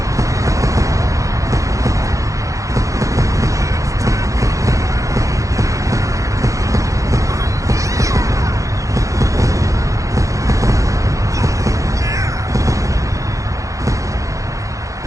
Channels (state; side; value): late; left; 0.16 ms